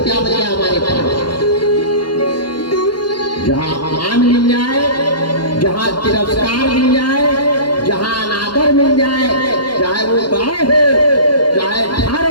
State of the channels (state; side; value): late; right; 0.71 ms